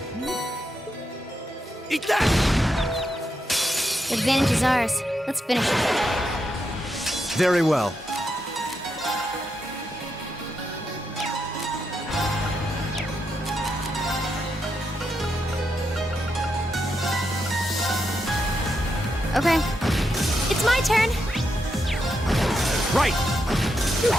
Eat that! Advantage is ours. Let's finish it. Very well. Okay. It's my turn! Right!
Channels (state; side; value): normal; both; correlation 0.83